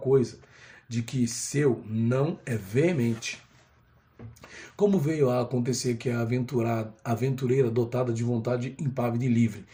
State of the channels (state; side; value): identical; both; correlation 1.00